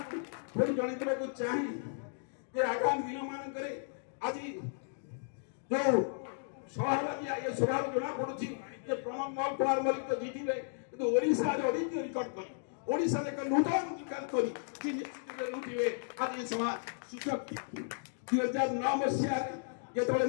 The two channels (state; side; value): silent; right; digital silence